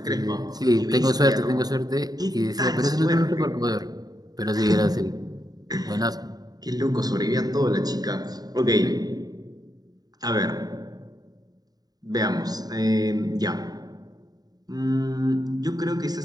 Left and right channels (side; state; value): left; late; 0.19 ms